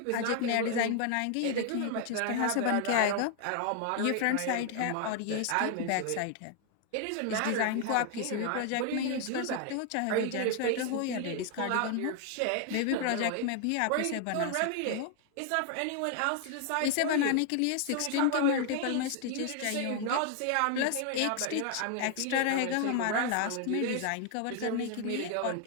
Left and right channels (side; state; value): both; different; correlation 0.00